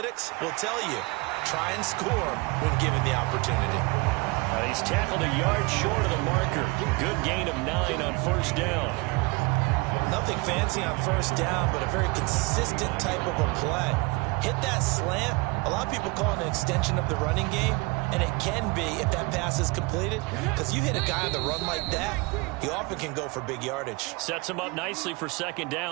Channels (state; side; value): quieter; left; 26.3 dB